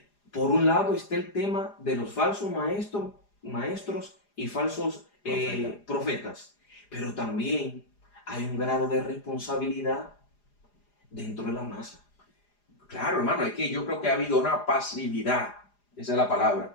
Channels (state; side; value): late; right; 4.9 ms